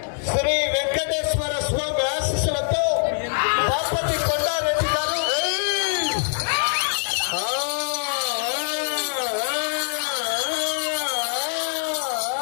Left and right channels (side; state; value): right; silent; digital silence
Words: శ్రీ వెంకటేశ్వర స్వామి ఆశీస్సులతో బాపతి కొండారెడ్డి గారు